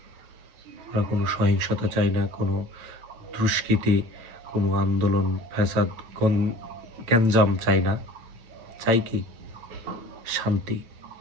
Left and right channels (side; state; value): left; late; 8.6 ms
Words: আমরা কোনো সহিংসতা চাই না, কোনো দুষ্কৃতি, কোনো আন্দোলন, ফ্যাসাদ, গ্যাঞ্জাম চাই না। চাই কি? শান্তি।